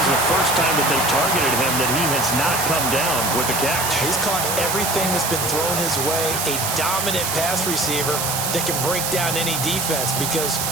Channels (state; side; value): noise; right; hiss, 1 dB below the sound